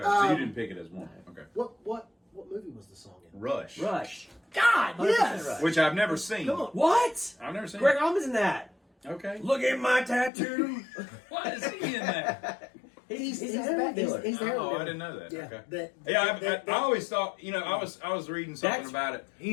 so you didn't pick it as one. Okay. What movie was the song in? Rush. God, 100% yes. Rush. Which I've never seen. Come on. What? I've never seen Greg it. Allman's in that. Okay. Look at my tattoo. Why is he in that? He's the the heroin dealer. He's the heroin Oh, dealer. I didn't know that. Yeah. Okay. I always thought, I was reading something about it.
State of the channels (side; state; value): right; drops out; at 10.3 s